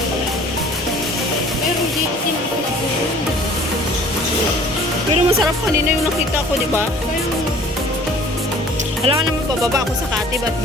Pero dito tinapos. Pero masarap kanina yung nakita ko, di ba? Alam ka naman, bababa ako sa Katib at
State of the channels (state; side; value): normal; both; correlation 0.50